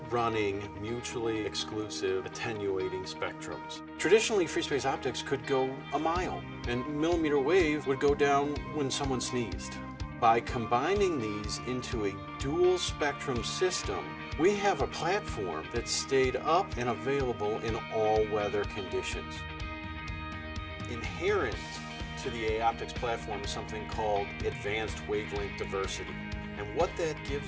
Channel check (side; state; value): both; identical; correlation 1.00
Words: running mutually exclusive attenuating spectrums. Traditionally, free space optics could go a mile, and millimeter wave would go down when someone sneezed. By combining these into a dual spectrum system, we have a platform that stayed up and available in all weather conditions. Inherent to the AOptics platform is something called advanced wavelength diversity. And what that